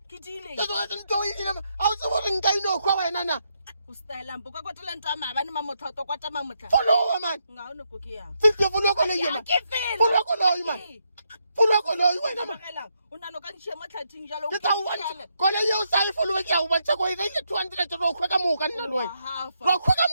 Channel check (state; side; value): inverted; both; correlation -0.79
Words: Ke dile. ke kwatetse ntse o ile a o tsebo re nka ino kwa wena na O style mpo ka kwatela ntwa mabane mamotloto kwata mamotla. followa mane Nga ona go ke yang. fifty followa ko le Ya yena ke fela. followa ko le mane followa ko le wena mane Magela, o nano ka ntšhia mo tlhathing jalo. ke tla o bontsha ko le ye o sa e followa ke a o bontsha ko ile 200 ro khwa ka moka nna le wena ro khwa ka